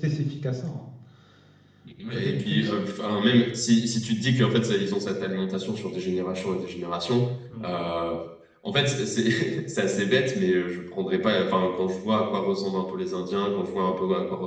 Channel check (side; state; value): both; identical; correlation 1.00